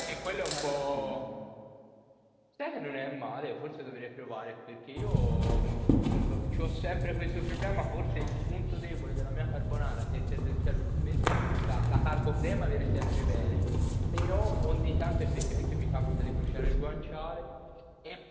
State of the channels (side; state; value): both; identical; correlation 1.00